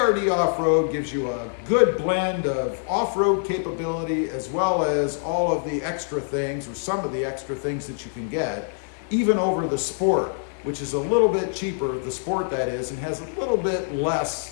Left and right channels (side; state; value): right; silent; digital silence